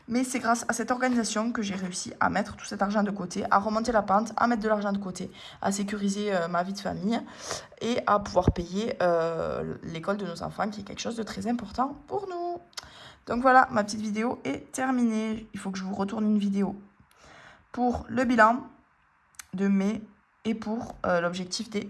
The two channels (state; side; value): identical; both; correlation 1.00